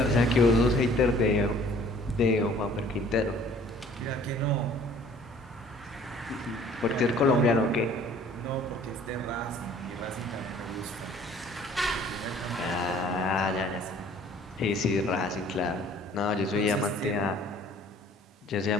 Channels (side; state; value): both; normal; correlation 0.54